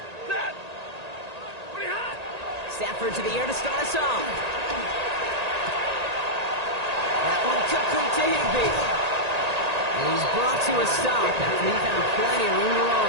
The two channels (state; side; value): late; left; 1.8 ms